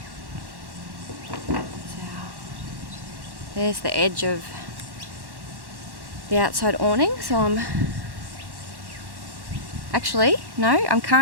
There's the edge of the outside awning, so I'm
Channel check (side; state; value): left; late; 1.1 ms